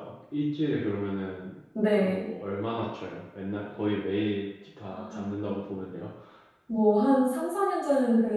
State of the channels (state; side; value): identical; both; correlation 1.00